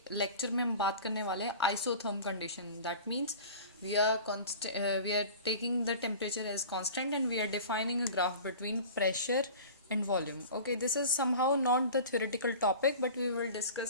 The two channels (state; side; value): inverted; both; correlation -0.39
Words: lecture में हम बात करने वाले हैं isotherm condition. That means we are taking the temperature as constant and we are defining a graph between pressure and volume. Okay, this is somehow not the theoretical topic, but we will